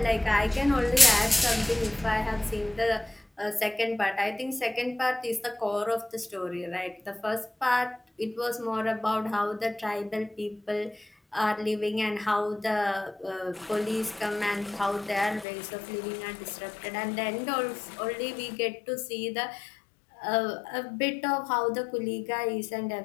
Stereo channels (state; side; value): drops out; right; at 15.5 s